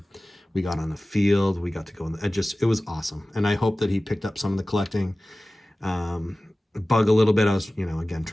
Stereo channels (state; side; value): normal; both; correlation 0.97